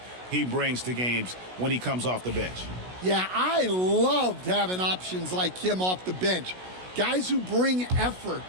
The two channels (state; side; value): late; left; 16 ms